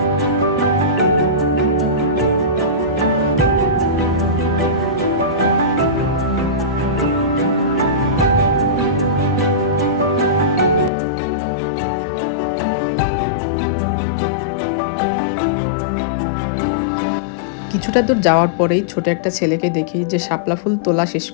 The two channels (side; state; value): right; drops out; at 10.9 s